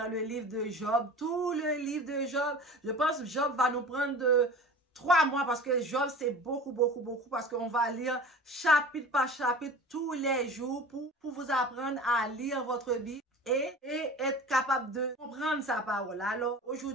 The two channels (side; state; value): both; normal; correlation 0.38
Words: le livre de Job, tout le livre de Job. Je pense que Job va nous prendre de 3 mois parce que Job, c'est beaucoup, parce qu'on va lire chapitre par chapitre tous les jours pour vous apprendre à lire votre Bible et être capable de comprendre sa parole. Alors,